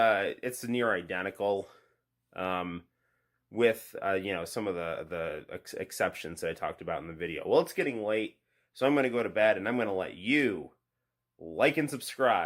near identical, with some of the exceptions that I talked about in the video. Well, it's getting late, so I'm going to go to bed, and I'm going to let you like and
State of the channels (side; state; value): both; identical; correlation 1.00